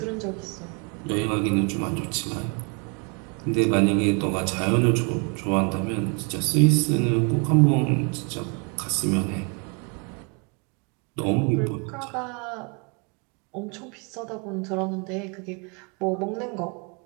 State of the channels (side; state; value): left; quieter; 34.9 dB